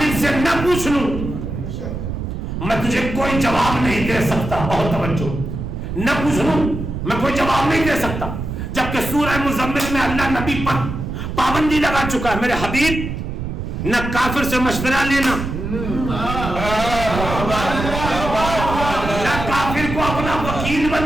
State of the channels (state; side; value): noise; right; rumble, 5 dB below the sound